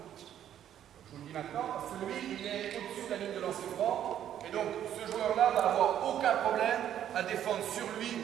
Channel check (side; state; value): left; quieter; 10.6 dB